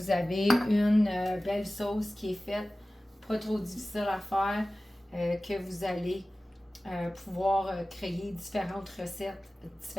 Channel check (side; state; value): both; normal; correlation 0.97